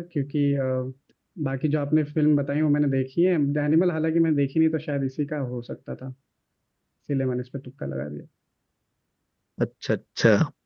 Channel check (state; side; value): identical; both; correlation 1.00